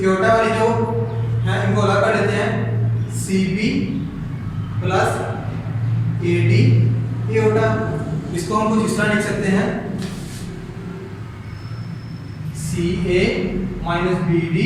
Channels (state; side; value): identical; both; correlation 1.00